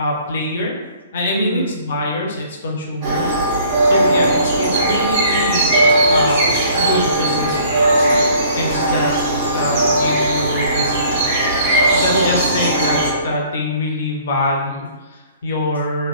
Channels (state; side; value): inverted; both; correlation -0.55